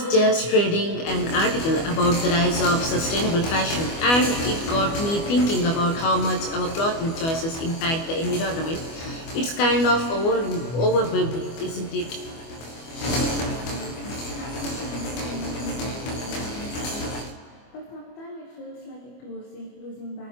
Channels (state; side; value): late; right; 25 ms